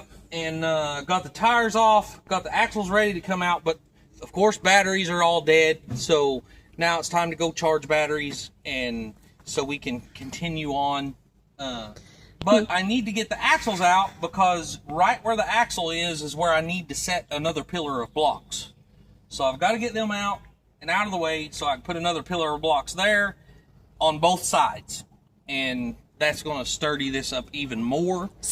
And got the tires off, got the axles ready to come out, but of course batteries are all dead. So now it's time to go charge batteries, and so we can continue on. But I need to get the axles out because right where the axle is where I need to set another pillar of blocks. So I've got to get them out and out of the way so I can put another pillar of blocks there on both sides. And that's going to sturdy this up even more.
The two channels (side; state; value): both; identical; correlation 1.00